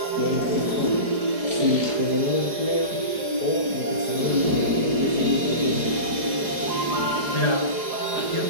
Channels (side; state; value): left; late; 4.8 ms